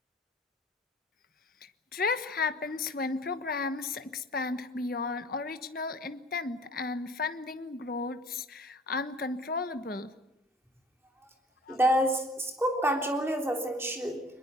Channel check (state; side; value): normal; both; correlation 0.49